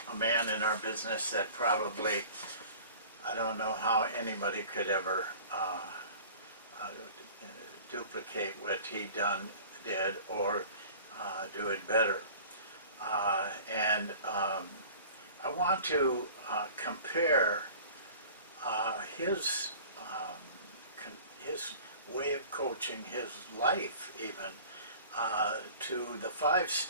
a man in our business that probably, I don't know how anybody could ever duplicate what he did or do it better. I want to compare his way of coaching, his life even, to the 5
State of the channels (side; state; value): both; inverted; correlation -0.44